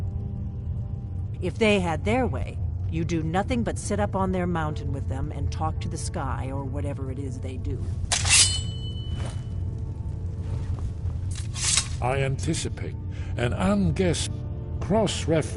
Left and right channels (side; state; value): both; identical; correlation 1.00